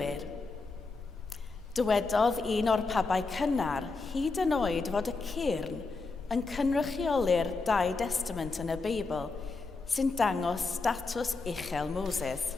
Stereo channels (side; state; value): right; quieter; 3.9 dB